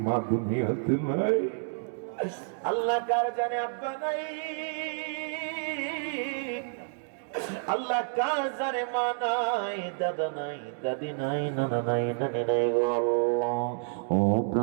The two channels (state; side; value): silent; left; digital silence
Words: মা দুনিয়াতে নাই, আল্লাহ কার জানে আব্বা নাই, আল্লাহ কার জানে মা নাই, দাদা নাই, দাদি নাই, নানা নাই, নানি নাই গো আল্লাহ। ও